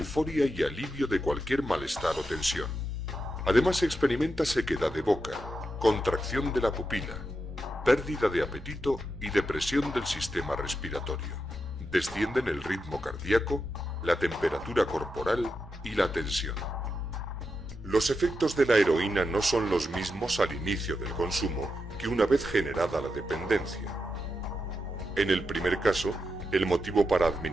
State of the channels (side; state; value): both; normal; correlation 0.87